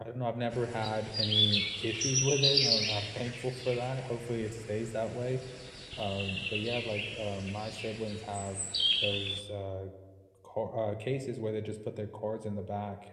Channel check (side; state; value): both; identical; correlation 1.00